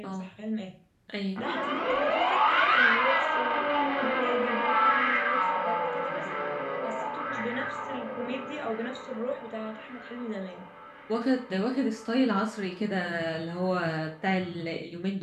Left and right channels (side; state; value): both; identical; correlation 1.00